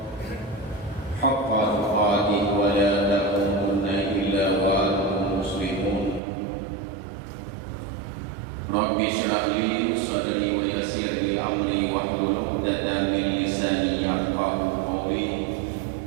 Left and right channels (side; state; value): left; drops out; at 6.2 s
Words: haqqa tuqatih wa la tamutunna illa wa antum muslimun. Rabbi shrah li sadri wa yassir li amri wahlul 'uqdatam min lisani yafqahu qawli.